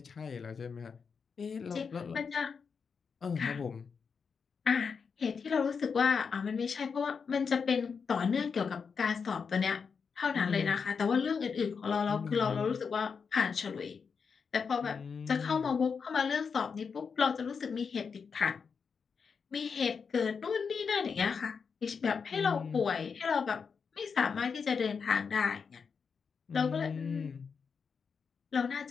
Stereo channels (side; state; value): right; quieter; 5.8 dB